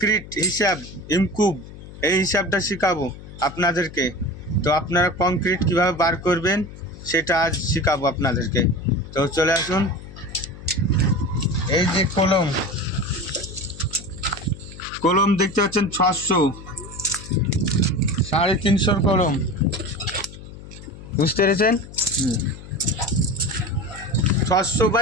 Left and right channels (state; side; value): noise; left; hum, 15 dB below the sound